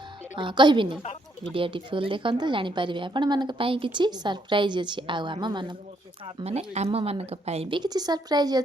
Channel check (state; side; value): normal; both; correlation 0.73